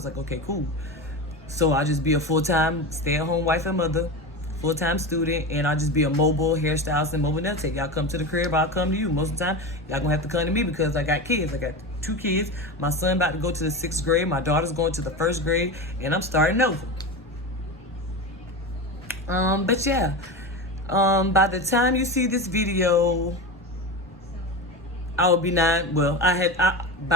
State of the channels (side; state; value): both; normal; correlation 0.24